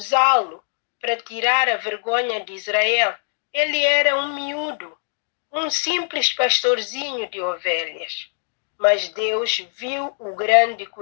para tirar a vergonha de Israel, ele era um miúdo, um simples pastorzinho de ovelhas. Mas Deus viu o grande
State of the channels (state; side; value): silent; right; digital silence